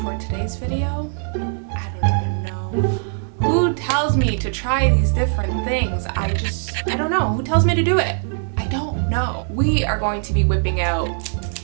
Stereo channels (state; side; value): silent; left; 65 dB below the other